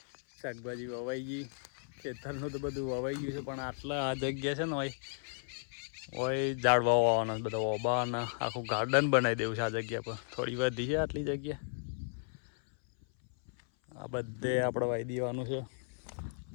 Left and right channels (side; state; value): right; silent; 55 dB below the other